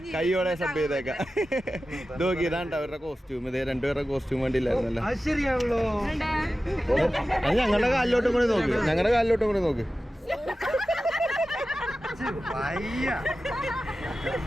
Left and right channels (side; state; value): both; normal; correlation 0.94